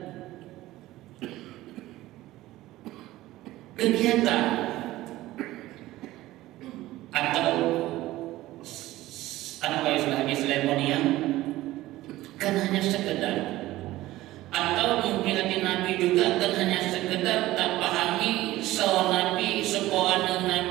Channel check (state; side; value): quieter; left; 16.6 dB